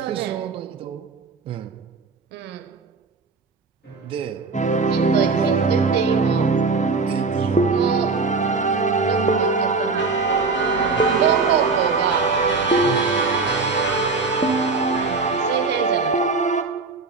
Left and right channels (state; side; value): quieter; left; 4.2 dB